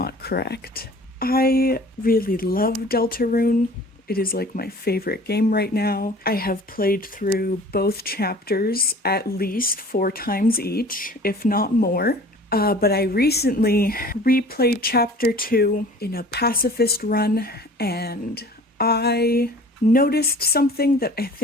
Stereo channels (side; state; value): both; normal; correlation 0.46